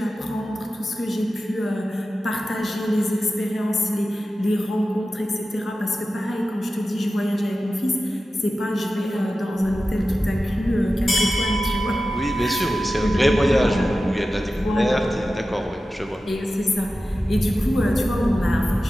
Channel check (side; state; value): both; normal; correlation 0.94